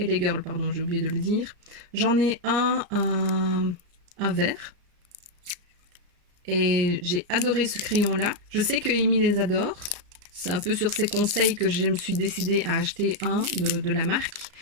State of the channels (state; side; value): late; left; 34 ms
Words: Girl, pardon, j'ai oublié de le dire. J'en ai un vert. Et j'ai adoré ce crayon-là. Je sais que Amy les adore. C'est un peu sur ses conseils que je me suis décidée à acheter un de la marque.